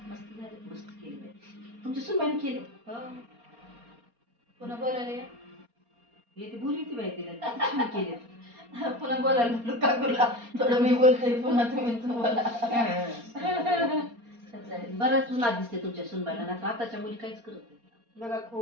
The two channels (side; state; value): left; late; 4.3 ms